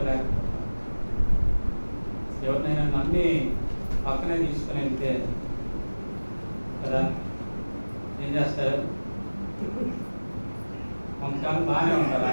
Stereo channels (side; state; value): both; inverted; correlation -1.00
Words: ఎవరినైనా నమ్మి పక్కనే తీసుకుని వెళ్తే కదా ఏం చేస్తారు, కొంతకాలం బాగానే ఉంటారు.